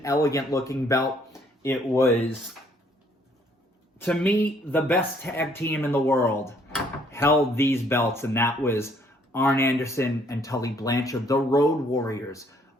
elegant looking belt. It was, to me, the best tag team in the world held these belts, and that was Arn Anderson and Tully Blanchard. The Road Warriors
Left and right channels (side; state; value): both; normal; correlation 0.64